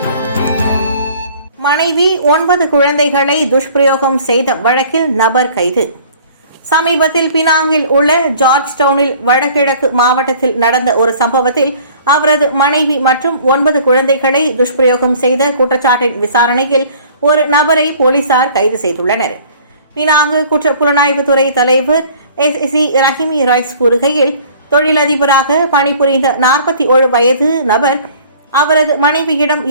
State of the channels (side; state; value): both; inverted; correlation -0.52